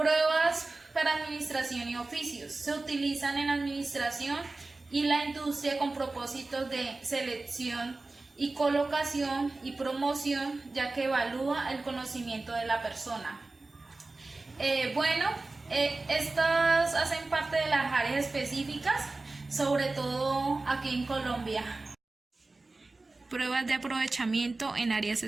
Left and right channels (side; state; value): left; quieter; 3.3 dB